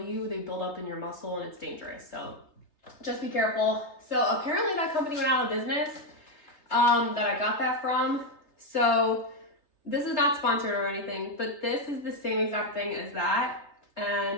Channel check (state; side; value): late; right; 3.3 ms